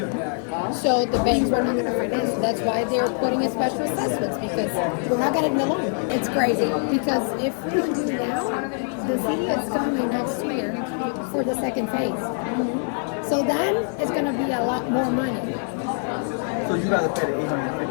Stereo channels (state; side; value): silent; right; 58 dB below the other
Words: So the banks were not going to finance. That's why they're putting in special assessments, because we're not getting the loan. It's crazy, because if we do now, the city is coming next year for the second phase. So then it's going to be a lot more money. So you gotta pay the